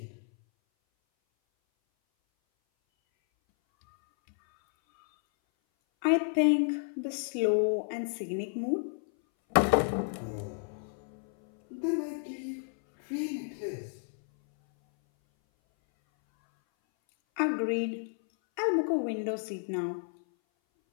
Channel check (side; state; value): right; silent; 57 dB below the other